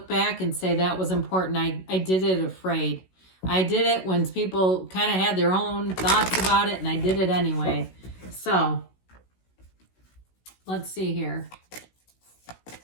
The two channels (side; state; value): right; late; 16 ms